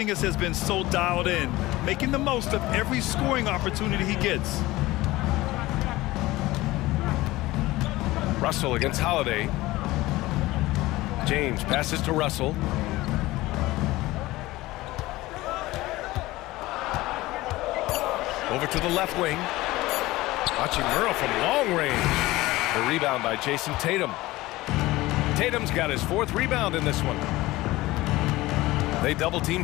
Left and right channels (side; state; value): right; quieter; 18.7 dB